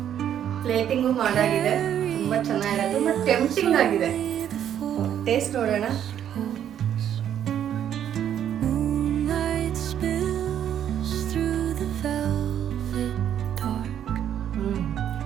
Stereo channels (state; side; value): quieter; left; 9.9 dB